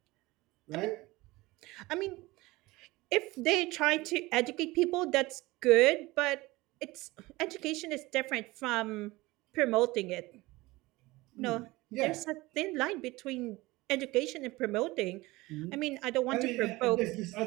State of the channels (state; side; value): quieter; left; 20.7 dB